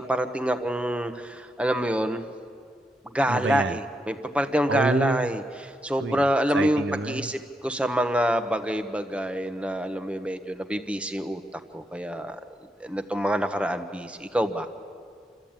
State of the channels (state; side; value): normal; both; correlation 0.82